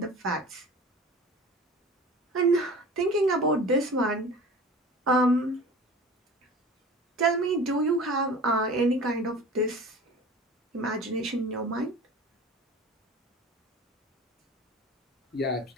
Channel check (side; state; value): both; normal; correlation 0.39